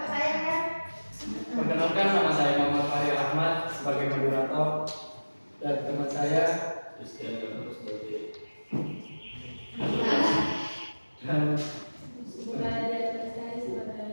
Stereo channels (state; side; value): inverted; both; correlation -1.00